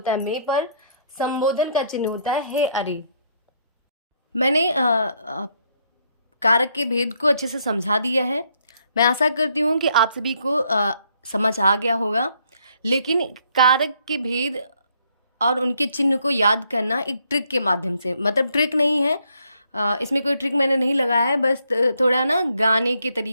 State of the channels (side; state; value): both; inverted; correlation -0.70